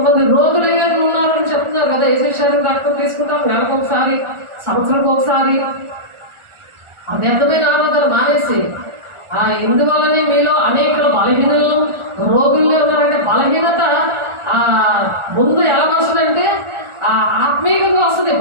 రోగులు ఏమైనా ఉన్నారని చెప్తున్నారు కదా, యేసు శరీరం రక్తం తీసుకుంటాం నెలకు ఒకసారి, సంవత్సరంకి ఒకసారి. ఆ వ్యర్థమైన ఆరాధన మానేసి ఇందువల్లనే మీలో అనేకలు బలహీనలు రోగుల్లో ఉన్నారంటే బలహీనత ముందు ఎలా వస్తుందంటే ఆత్మీయంగా వస్తుంది.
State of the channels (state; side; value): late; left; 1.4 ms